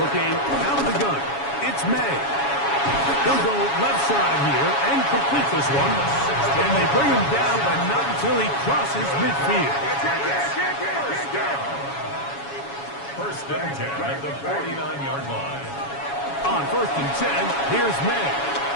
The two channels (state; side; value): late; right; 7.2 ms